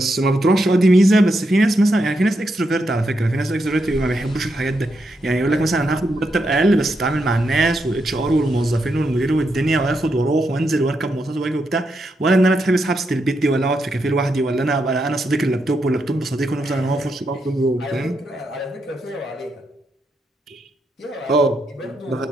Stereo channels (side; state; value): both; normal; correlation 0.82